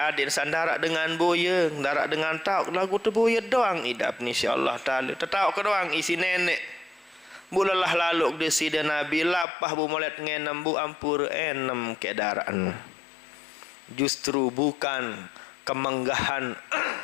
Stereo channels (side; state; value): right; drops out; at 9.5 s